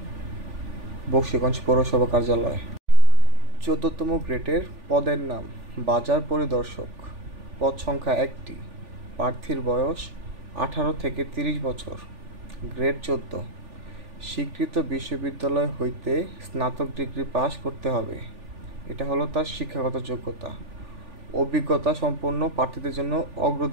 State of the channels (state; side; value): late; left; 3.4 ms